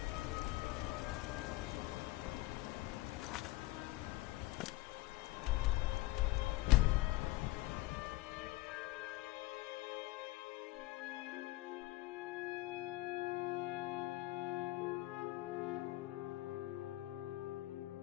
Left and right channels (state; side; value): quieter; right; 18.6 dB